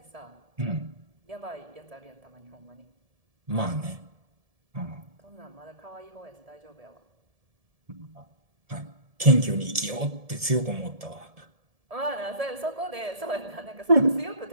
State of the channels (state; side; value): late; left; 1.7 ms